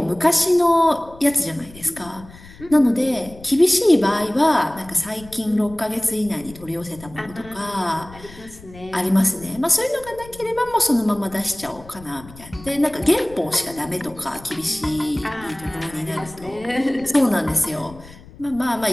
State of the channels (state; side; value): noise; left; rumble, 20 dB below the sound